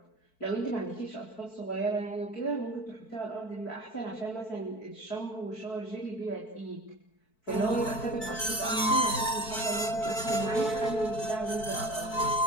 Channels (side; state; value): right; late; 4.6 ms